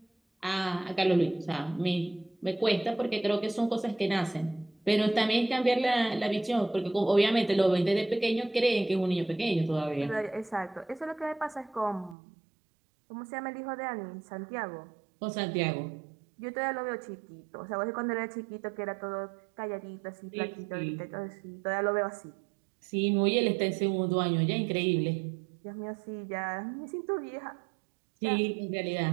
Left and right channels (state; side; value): drops out; left; at 12.2 s